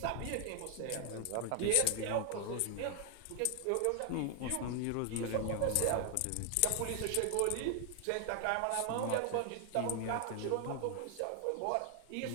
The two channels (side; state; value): both; different; correlation 0.00